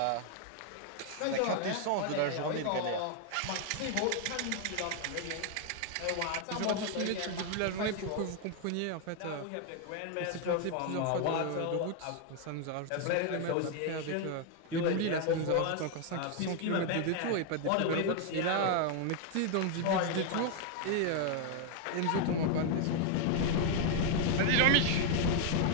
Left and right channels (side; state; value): both; different; correlation 0.00